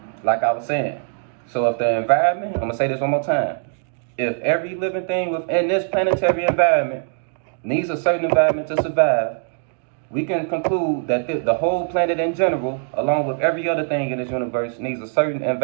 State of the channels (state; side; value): silent; left; digital silence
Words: like I was saying, so if the environment, I'm gonna say this one more time, if every living thing within this planetary environment needs a certain environment to survive, we can conclude that the whole planet in general, along with every other thing in this universe, needs a certain